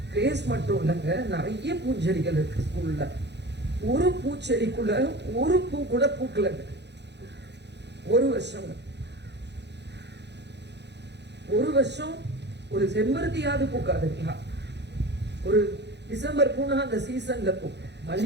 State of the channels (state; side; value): late; left; 0.50 ms